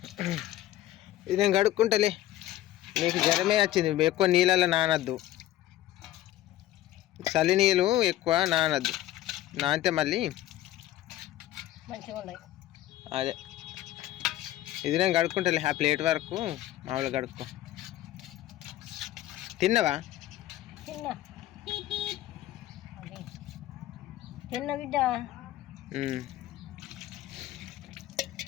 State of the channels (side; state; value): right; quieter; 14.3 dB